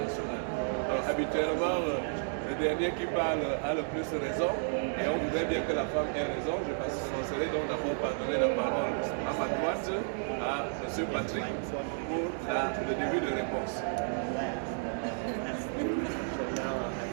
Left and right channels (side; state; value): left; silent; digital silence